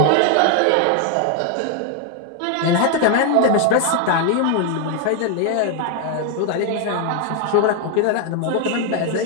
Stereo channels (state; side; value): different; both; correlation 0.01